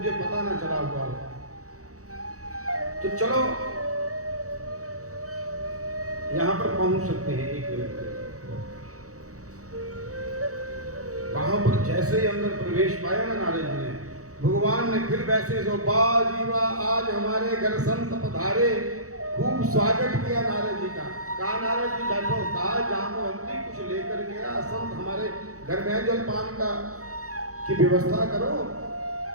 पता ना चला हुआ हो। तो चलो यहां पर पहुंच सकते हैं 1 मिनट में। वहां पर जैसे ही अंदर प्रवेश पाया ना नारद जी ने, भगवान ने फिर वैसे सो बाजीवा, आज हमारे घर संत पधारे। खूब स्वागत किया नारद जी का। कहा, नारद जी बैठो। कहा, जामवंती कुछ लेकर गया, संत हमारे घर में जलपान का की व्यवस्था करो।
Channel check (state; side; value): late; left; 0.65 ms